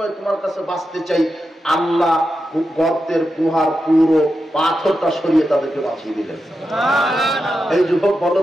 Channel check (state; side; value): normal; both; correlation 0.89